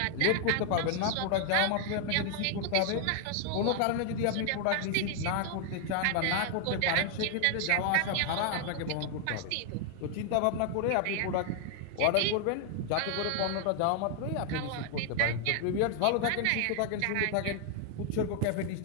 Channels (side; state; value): both; different; correlation 0.00